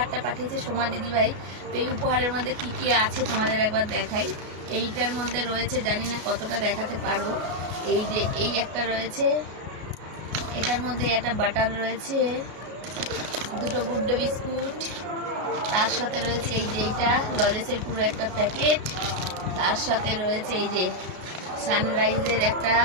পাঠিয়েছে সোমা দিদিভাই। তো এই উপহারের মধ্যে কি কি আছে তোমাদের একবার দেখাই। এইটার মধ্যে রয়েছে, জানি না কতটা দেখাতে পারবো, এই যে এই একটা রয়েছে, এটার মধ্যে একটা বাটার রয়েছে, দুটো গুড ডে বিস্কুট, তার সাথে রয়েছে এই যে এইটা লজেসের পুরো একটা প্যাকেট, তার সাথে রয়েছে এই যে সানরাইজের একটা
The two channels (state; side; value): late; left; 33 ms